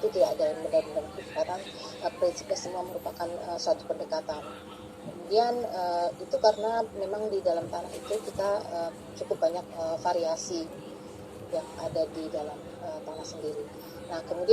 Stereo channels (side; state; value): both; identical; correlation 1.00